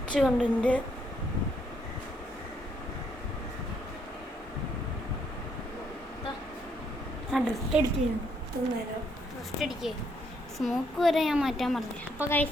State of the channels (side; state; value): both; normal; correlation 0.72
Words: കണ്ടിൻ്റെ ഡ്രിഫ്റ്റ് അടിക്കുന്നു. ഫസ്റ്റ് അടിക്കേ, സ്മോക്ക് വരെ ഞാൻ മാറ്റാൻ പറഞ്ഞു. അപ്പോൾ